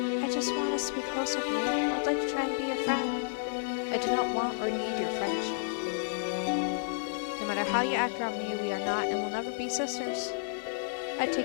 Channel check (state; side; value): silent; right; digital silence